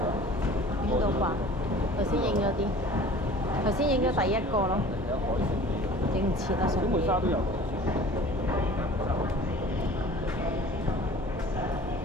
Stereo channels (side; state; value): both; normal; correlation 0.45